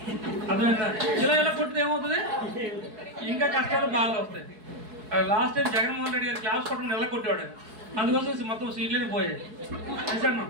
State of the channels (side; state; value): left; late; 4.7 ms